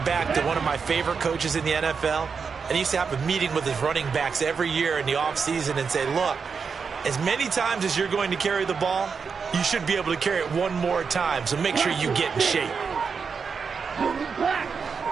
back to one of my favorite coaches in the NFL. And he used to have a meeting with his running backs every year in the offseason and say, look, as many times as you're going to carry the ball, you should be able to carry it one more time, so make sure you get in shape.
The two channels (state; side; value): quieter; left; 5.7 dB